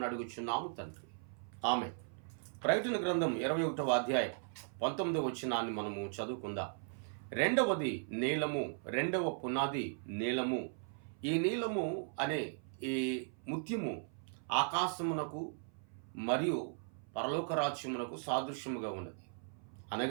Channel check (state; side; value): silent; left; 53 dB below the other